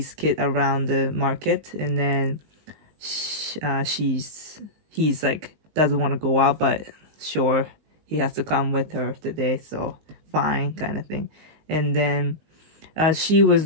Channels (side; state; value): left; late; 19 ms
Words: kid around the market, and then he's like doesn't want to go out, but sure, he has to come with her today, so fine, kind of thing. And then she was